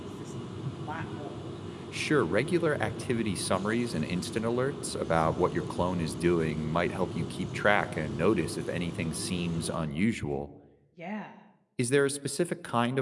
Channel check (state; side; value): identical; both; correlation 1.00